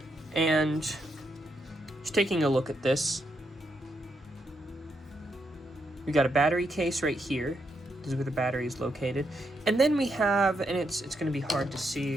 And just taking a look at this, we got a battery case right here. This is where the battery is located. And then we have, and it's going to be hard to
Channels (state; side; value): normal; both; correlation 0.80